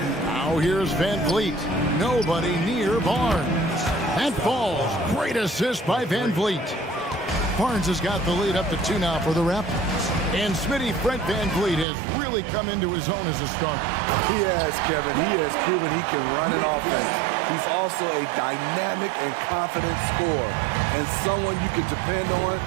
Now here's Van Vliet. Nobody near Barnes. That falls. Great assist by Van Vliet. Barnes has got the lead up to 2 now for the Raptors. And Smitty, Fred Van Vliet has really come into his own as a starter. He has, Kevin. He has proven he can run an offense. He's also a dynamic and confident scorer and someone you can depend on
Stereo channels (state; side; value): drops out; left; at 11.9 s